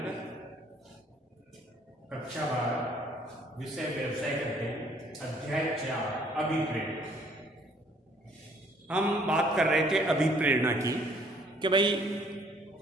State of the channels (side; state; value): both; normal; correlation 0.61